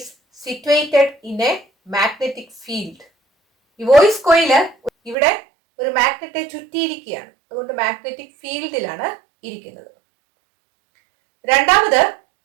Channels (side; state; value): left; drops out; at 5.2 s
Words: situated in a magnetic field. ഈ വോയിസ് കോയില് ഇവിടെ ഒരു മാഗ്നറ്റെ ചുറ്റിയിരിക്കുകയാണ്. അതുകൊണ്ട് മാഗ്നറ്റിക് ഫീൽഡിലാണ് ഇരിക്കുന്നത്. രണ്ടാമത്,